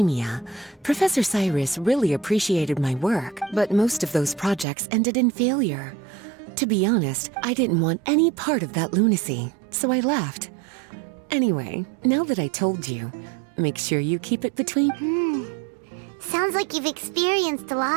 Professor Cyrus really appreciated my work, but most of those projects ended in failure. To be honest, I didn't want any part of that lunacy, so I left. Anyway, now that I told you, make sure you keep it between... Sounds like you've experienced a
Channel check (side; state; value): left; drops out; at 4.7 s